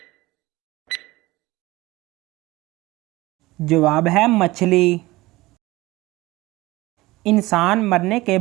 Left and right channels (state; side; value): quieter; left; 19.8 dB